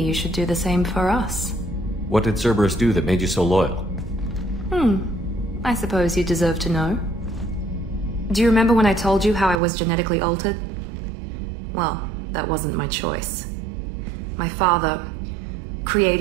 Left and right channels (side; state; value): left; drops out; at 9.6 s